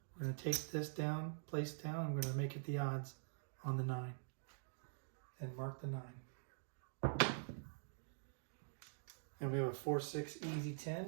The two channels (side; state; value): left; silent; digital silence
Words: We're going to take this down, place down. I'm going to make it the odds on the 9. And mark the 9. And we have a 4, 6, easy